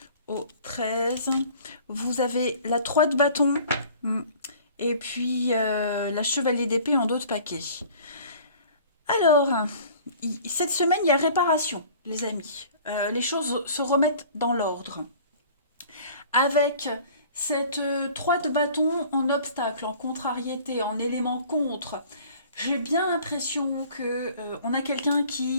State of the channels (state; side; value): inverted; both; correlation -0.48